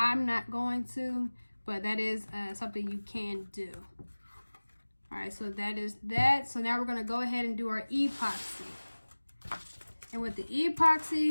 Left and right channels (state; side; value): inverted; both; correlation -1.00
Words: not going to, but that is something you can do. All right, so that is that. So now we're gonna go ahead and do our epoxy. And with the